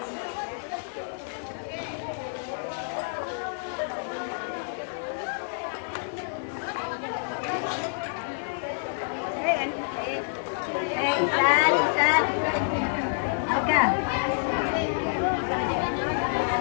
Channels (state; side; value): silent; right; digital silence